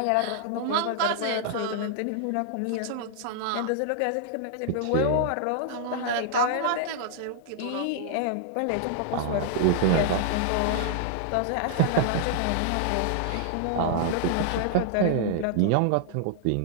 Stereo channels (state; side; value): different; both; correlation -0.01